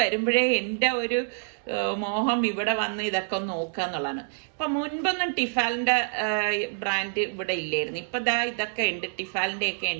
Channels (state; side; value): silent; left; 60 dB below the other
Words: വരുമ്പോഴേ എൻ്റെ ഒരു മോഹം ഇവിടെ വന്ന് ഇതൊക്കെ ഒന്ന് നോക്കുക എന്നുള്ളതാണ്. ഇപ്പം മുൻപൊന്നും ടിഫാലിൻ്റെ ബ്രാൻഡ് ഇവിടെ ഇല്ലായിരുന്നു. ഇപ്പം ദാ ഇതൊക്കെ ഉണ്ട്, ടിഫാലിൻ്റെ ഒക്കെ